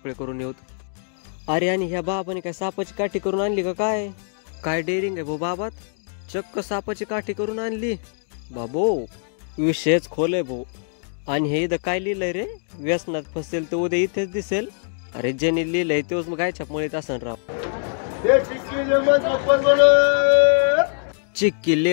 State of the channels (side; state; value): right; silent; digital silence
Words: करून येऊत. अरे आणि ह्या बाबाने काय सापाची काठी करून आणली का काय? काय डेअरिंग आहे भाऊ बाबात, चक्क सापाची काठी करून आणली बाबो. विषयच खोल आहे भाऊ. आणि हे इथं काय लिहिलंय रे, व्यसनात फसेल तर उद्या इथेच दिसेल. अरे ज्याने लिहिलंय तेच मग गायच्या मुळीत असन राव. चिक्की